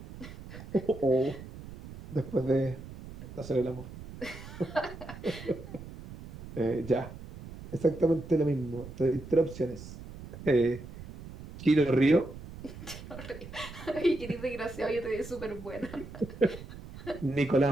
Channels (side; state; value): right; noise; rumble, 14 dB below the sound